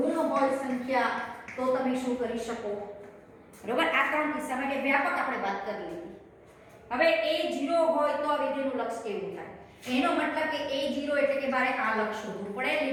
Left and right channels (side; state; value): both; identical; correlation 1.00